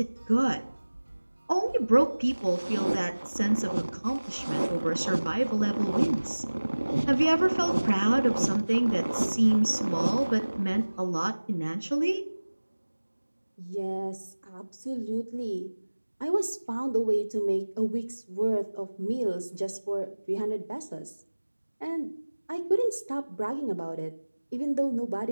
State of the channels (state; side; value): inverted; both; correlation -1.00